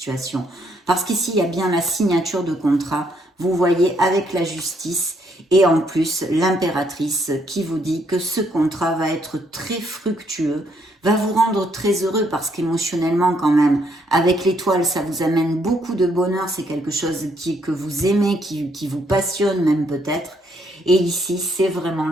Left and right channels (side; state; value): both; normal; correlation 0.71